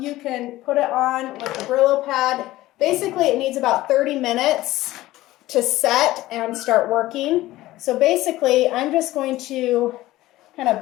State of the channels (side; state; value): right; quieter; 16.8 dB